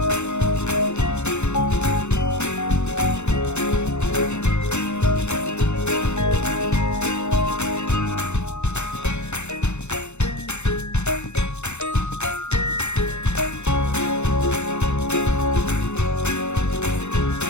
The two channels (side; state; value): right; late; 0.82 ms